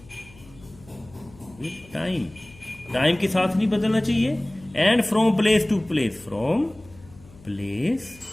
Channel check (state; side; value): noise; left; hum, 23 dB below the sound